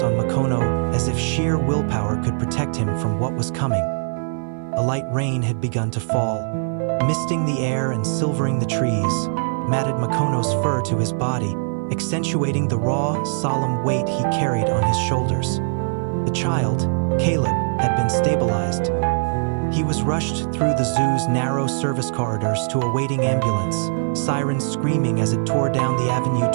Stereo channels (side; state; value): left; silent; 60 dB below the other